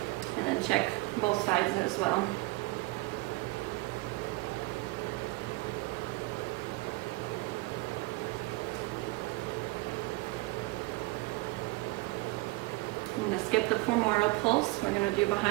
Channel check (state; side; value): quieter; left; 22.9 dB